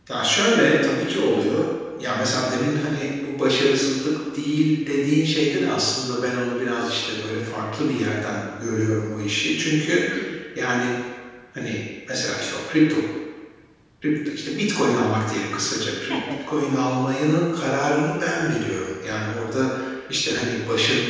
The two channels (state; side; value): identical; both; correlation 1.00